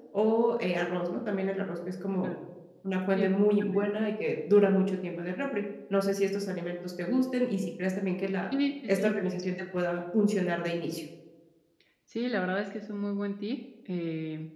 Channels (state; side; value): identical; both; correlation 1.00